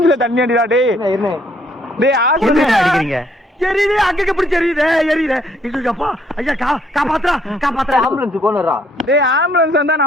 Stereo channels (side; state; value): both; normal; correlation 0.67